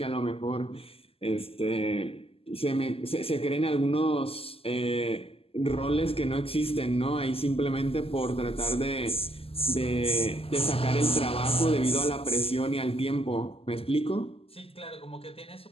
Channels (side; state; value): right; late; 0.28 ms